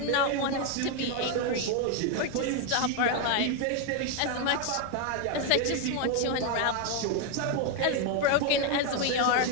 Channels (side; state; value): both; different; correlation 0.01